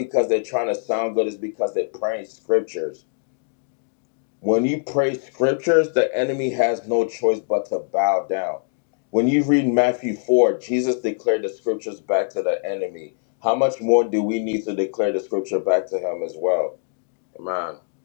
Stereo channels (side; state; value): right; silent; digital silence